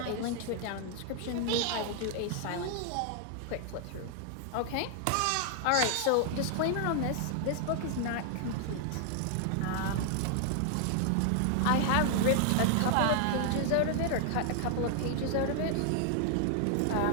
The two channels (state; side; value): different; both; correlation 0.00